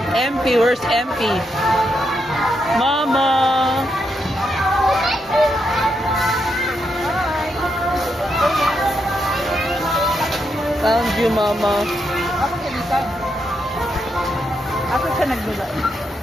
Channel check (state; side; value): normal; both; correlation 0.81